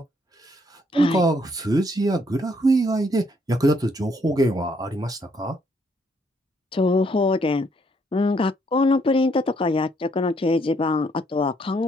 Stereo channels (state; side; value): normal; both; correlation 0.70